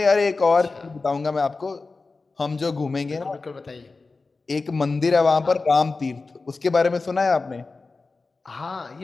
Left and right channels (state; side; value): quieter; right; 3.9 dB